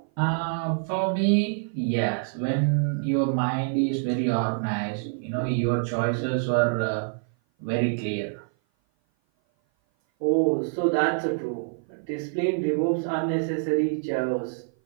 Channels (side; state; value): left; silent; 56 dB below the other